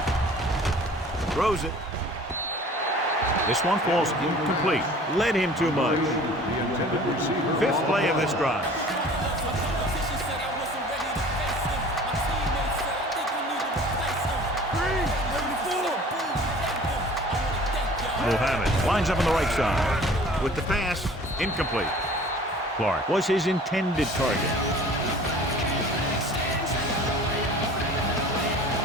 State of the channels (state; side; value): normal; both; correlation 0.47